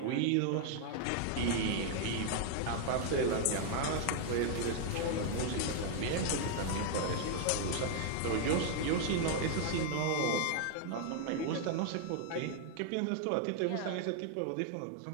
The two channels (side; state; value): both; different; correlation 0.00